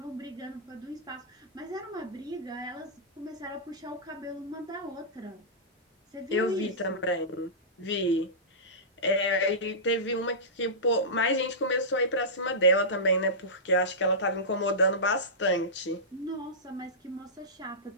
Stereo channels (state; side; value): normal; both; correlation -0.17